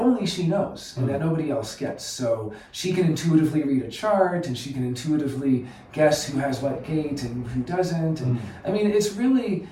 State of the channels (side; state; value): both; identical; correlation 1.00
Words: she knows, and that nobody else gets. So she can intuitively read a chart, and she can intuitively guess who has what gate and who doesn't. And it's really,